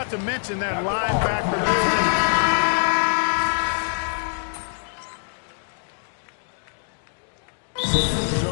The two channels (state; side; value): silent; right; digital silence